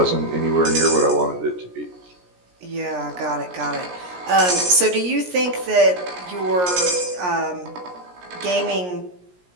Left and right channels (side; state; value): left; late; 17 ms